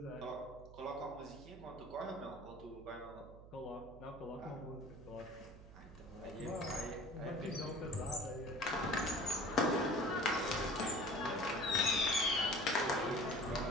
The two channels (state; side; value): noise; right; hum, 17 dB below the sound